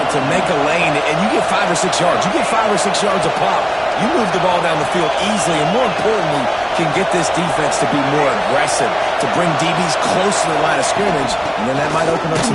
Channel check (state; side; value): identical; both; correlation 1.00